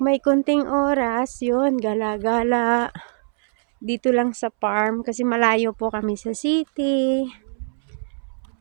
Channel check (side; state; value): left; silent; 64 dB below the other